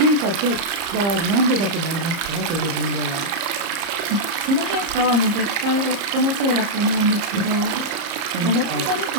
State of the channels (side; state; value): left; late; 30 ms